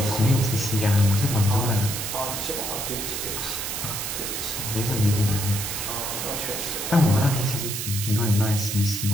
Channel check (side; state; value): right; noise; hiss, 4 dB below the sound